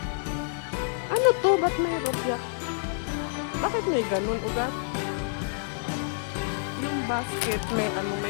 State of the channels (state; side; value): silent; right; digital silence